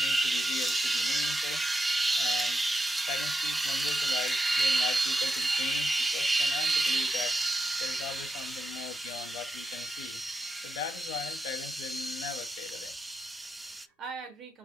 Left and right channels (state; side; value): normal; both; correlation 0.85